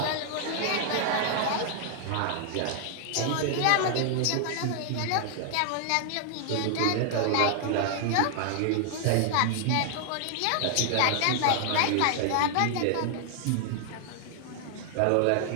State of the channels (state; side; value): different; both; correlation 0.00